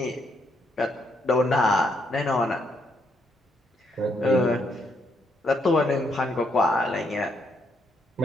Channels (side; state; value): both; normal; correlation 0.75